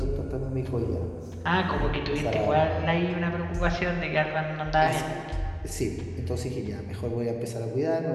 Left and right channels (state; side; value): identical; both; correlation 1.00